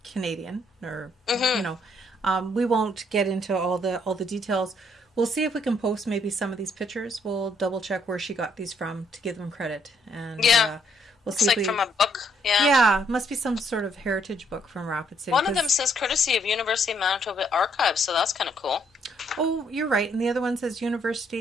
Canadian, or we won't get into all the details. We'll see if we can post maybe some of these pictures. We'll double check where she got these from to give them credit, and we'll see. It's from a book. Yeah, it must be some sort of heritage book from Rapid City. One of them says courtesy of University of Manitoba Archives, so that's kind of cool. Oh, you're right, and the other one says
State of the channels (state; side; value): normal; both; correlation 0.70